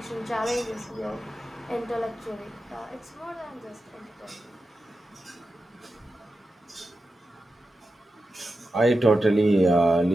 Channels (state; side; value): normal; both; correlation 0.91